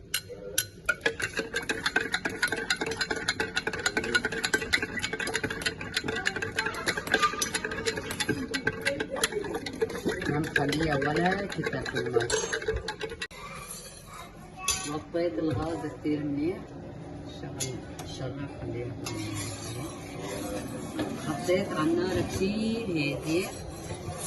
ما مخليها ولا كتل في المي. وطيت الغاز كتير منيح، الشغل خليها. حطيت على النار كتير هادي.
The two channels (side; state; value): both; identical; correlation 1.00